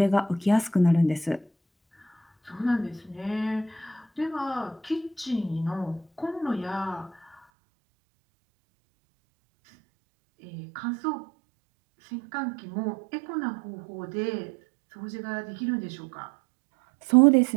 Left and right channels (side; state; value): left; drops out; at 7.4 s